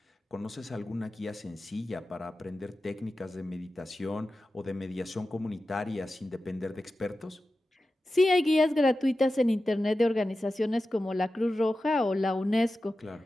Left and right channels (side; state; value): both; normal; correlation 0.93